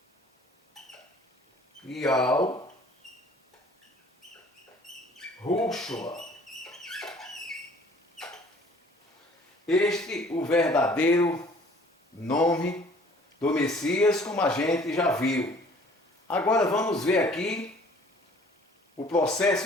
Yahushua. Este o verdadeiro nome do Messias, como a gente já viu. Agora vamos ver aqui o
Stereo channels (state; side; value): normal; both; correlation 0.54